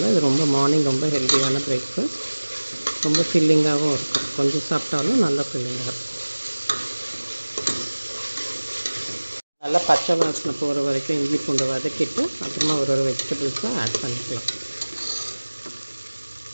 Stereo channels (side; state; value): both; inverted; correlation -1.00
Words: இது மார்னிங் ரொம்ப ஹெல்த்தியான பிரேக்ஃபாஸ்ட். ரொம்ப ஃபில்லிங்காகவும் இருக்கும். கொஞ்சம் சாப்பிட்டாலும் நல்லா ஃபில்லிங்காக இருக்கும். நல்லா பச்சை வாசனை போகிற வரைக்கும் இஞ்சி பூண்டு வதக்கிட்டு அப்புறமா ஒரு வெஜிடபிள்ஸை ஆட் பண்ணிக்கலாம்.